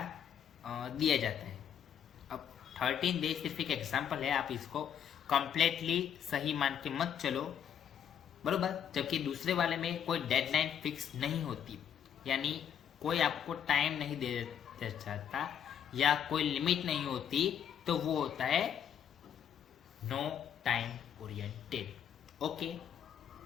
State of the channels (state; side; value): quieter; right; 8.9 dB